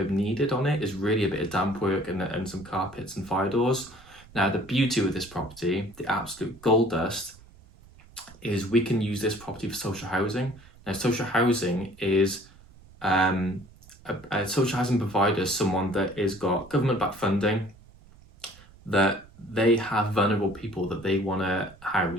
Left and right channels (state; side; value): noise; right; rumble, 24 dB below the sound